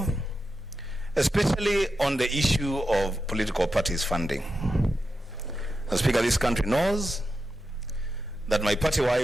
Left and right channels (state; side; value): normal; both; correlation 0.89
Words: especially on the issue of political parties funding. Mr. Speaker, this country knows that my party